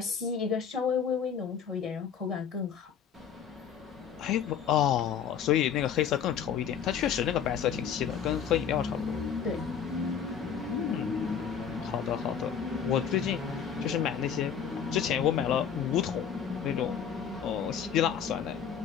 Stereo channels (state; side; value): quieter; right; 7.8 dB